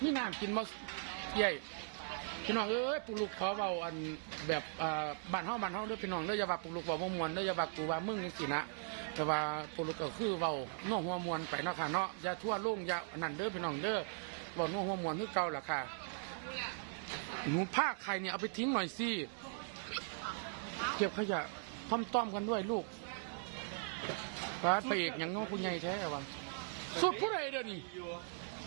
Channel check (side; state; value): left; silent; digital silence